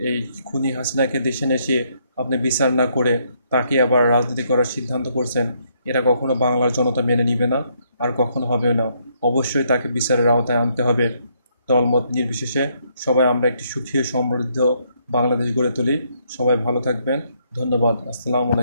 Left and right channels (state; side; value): inverted; both; correlation -0.72